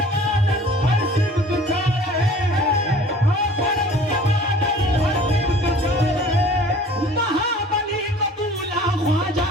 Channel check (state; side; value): normal; both; correlation 0.48